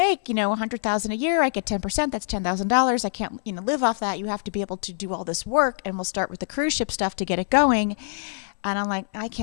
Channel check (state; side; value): silent; right; 62 dB below the other